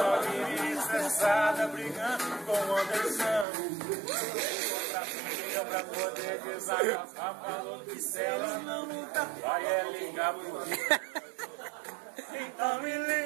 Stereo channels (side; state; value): left; drops out; at 3.5 s